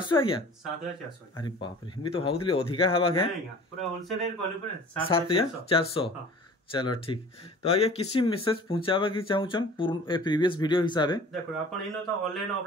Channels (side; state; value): both; normal; correlation 0.45